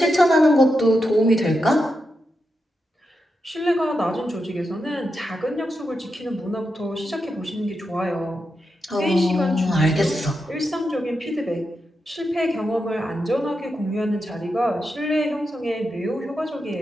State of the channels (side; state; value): both; normal; correlation 0.87